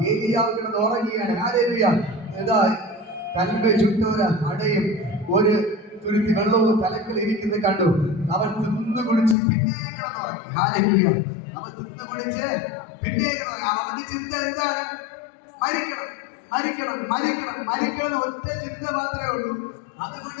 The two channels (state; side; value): drops out; right; at 9.3 s